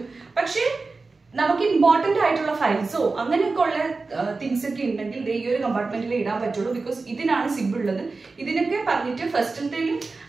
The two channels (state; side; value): quieter; left; 3.9 dB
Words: പക്ഷേ നമുക്ക് ഇമ്പോർട്ടന്റ് ആയിട്ടുള്ള ഫയൽസോ അങ്ങനെയൊക്കെ ഉള്ള തിങ്സ് ഒക്കെ ഉണ്ടെങ്കിൽ ഈ ഒരു കമ്പാർട്ട്മെന്റിൽ ഇടാൻ പറ്റുള്ളൂ. ബിക്കോസ് ഇതിനാണ് സിബ് ഉള്ളത്. ഇതിനൊക്കെ പറഞ്ഞിട്ട് ഫസ്റ്റിലത്തേലും